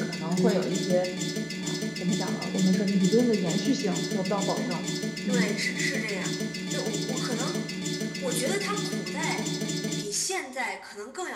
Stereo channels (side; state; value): both; identical; correlation 1.00